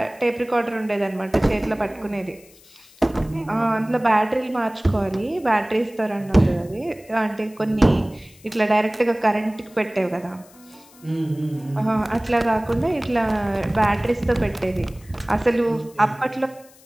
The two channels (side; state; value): left; noise; hiss, 26 dB below the sound